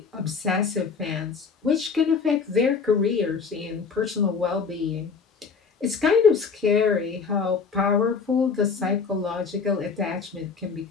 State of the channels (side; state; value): right; quieter; 5.3 dB